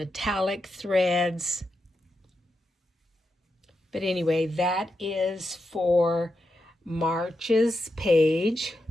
threads. But anyway, that is for March's page.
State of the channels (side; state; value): both; normal; correlation 0.86